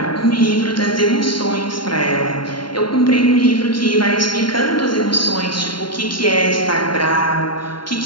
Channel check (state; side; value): late; right; 0.72 ms